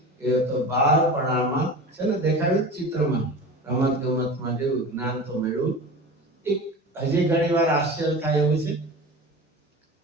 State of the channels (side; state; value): both; normal; correlation 0.33